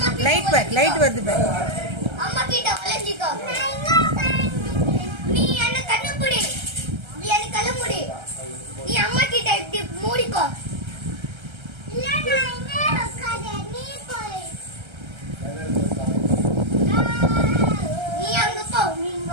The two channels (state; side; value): late; left; 1.3 ms